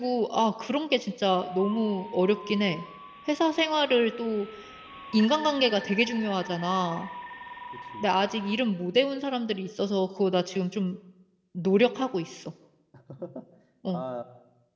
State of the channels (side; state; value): both; identical; correlation 1.00